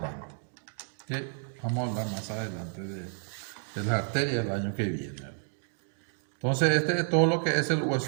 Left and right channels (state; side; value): silent; left; 57 dB below the other